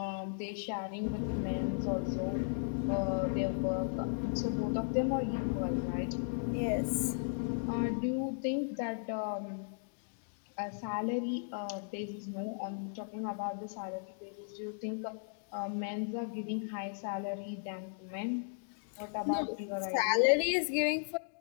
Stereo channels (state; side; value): silent; right; digital silence